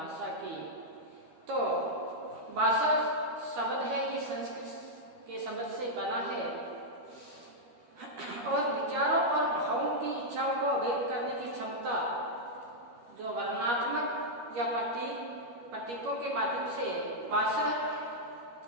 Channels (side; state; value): left; late; 13 ms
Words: की तो भाषा शब्द है कि संस्कृत के शब्द से बना है और विचारों और भावों की इच्छाओं को व्यक्त करने की क्षमता जो वर्णनात्मक या प्रतीकों के माध्यम से भाषा